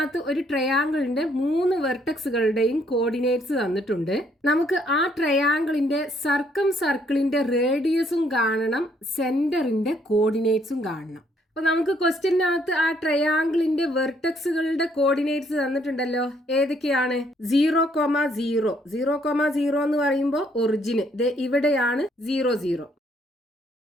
ഒരു ട്രയാങ്കിളിന്റെ 3 വെർട്ടക്സുകളുടെയും കോർഡിനേറ്റ്സ് തന്നിട്ടുണ്ട്. നമുക്ക് ആ ട്രയാങ്കിളിന്റെ സർക്കം സർക്കിളിന്റെ റേഡിയസും കാണണം, സെന്ററിന്റെ കോർഡിനേറ്റ്സും കാണണം. അപ്പൊ നമുക്ക് ക്വസ്റ്റ്യനകത്ത് ആ ട്രയാങ്കിളിന്റെ വെർട്ടക്സുകളുടെ കോർഡിനേറ്റ്സ് തന്നിട്ടുണ്ടല്ലോ. ഏതൊക്കെയാണ്? 0,0. 0,0 എന്ന് പറയുമ്പോൾ ഒറിജിന് ഇവിടെയാണ് 0,0.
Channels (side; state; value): both; normal; correlation 0.68